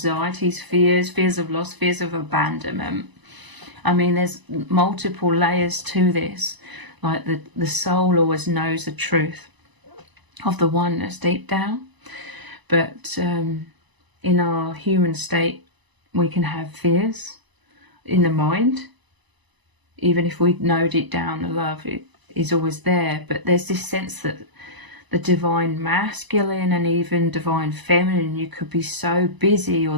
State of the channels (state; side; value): late; left; 1.0 ms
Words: fears of loss, fears of abandonment. I mean, there's multiple layers to this. Like the soul always knows the truth of the oneness deep down. But in our human state, we can have fears in the mind. Even if we know deep down the love is always there. But there's this sense that the divine masculine and even divine feminine, you could be so busy or